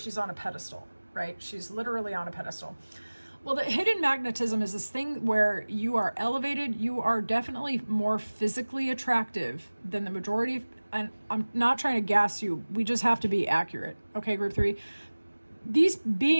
on a pedestal, right? She's literally on a pedestal. Well, the hidden magnetism is this thing where you are elevated. You are definitely more physically attractive than the majority. And I'm not trying to gas you. We just have to be accurate. Okay, group 3. These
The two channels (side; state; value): both; inverted; correlation -1.00